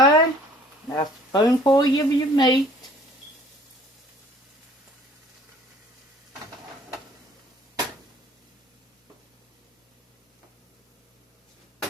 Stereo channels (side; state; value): both; normal; correlation 0.54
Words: now a spoonful of your meat.